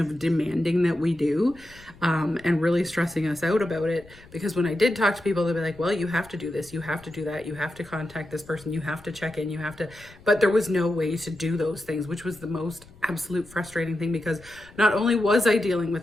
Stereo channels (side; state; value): left; noise; rumble, 23 dB below the sound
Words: demanding that we do, and really stressing us out about it. Because when I did talk to people, they'd be like, well, you have to do this, you have to do that, you have to contact this person, you have to check in, you have to, but there was no way to do those things, which was the most absolute frustrating thing, because not only was I dealing